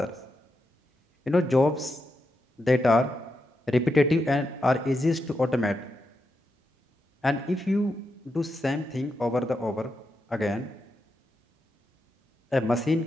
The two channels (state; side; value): normal; both; correlation 0.85